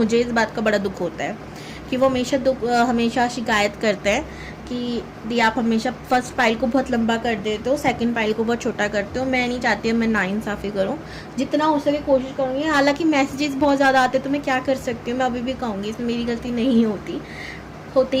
इस बात का बड़ा दुख होता है कि वो हमेशा शिकायत करते हैं कि दी आप हमेशा फर्स्ट फाइल को बहुत लंबा कर देते हो, सेकंड फाइल को बहुत छोटा करते हो। मैं नहीं चाहती मैं नाइंसाफ़ी करूँ, जितना हो सके कोशिश करूँगी। हालांकि मैसेजेस बहुत ज़्यादा आते तो मैं क्या कर सकती हूँ, मैं अभी भी कहूँगी इसमें मेरी गलती नहीं होती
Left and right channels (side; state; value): both; identical; correlation 1.00